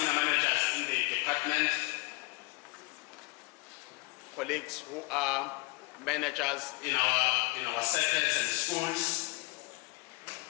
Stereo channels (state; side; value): quieter; right; 24.5 dB